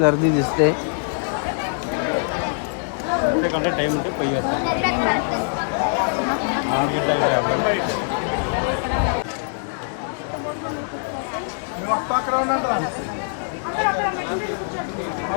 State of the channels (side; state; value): right; silent; digital silence